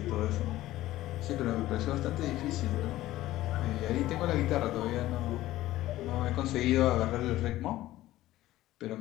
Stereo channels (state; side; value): quieter; right; 15.6 dB